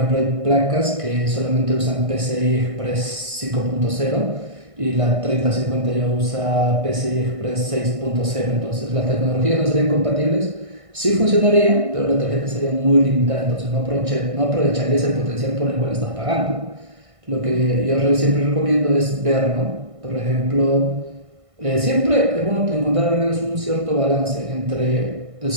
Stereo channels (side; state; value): left; late; 1.5 ms